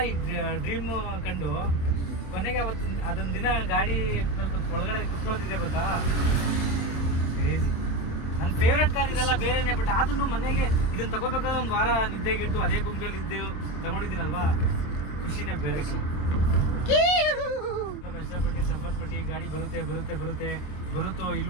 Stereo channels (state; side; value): late; right; 27 ms